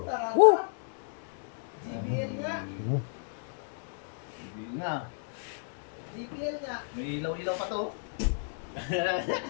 taranta. Woo! JBL nga. Hindi nga. JBL nga. May ilaw-ilaw pa to.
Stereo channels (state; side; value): silent; right; digital silence